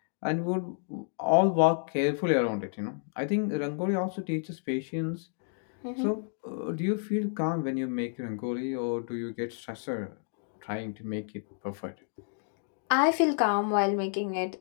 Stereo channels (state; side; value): silent; right; digital silence